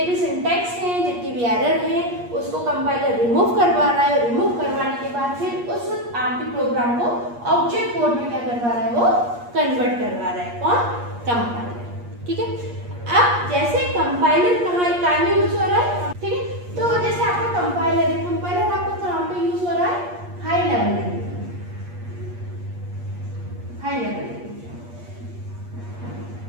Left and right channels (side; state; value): left; late; 8.4 ms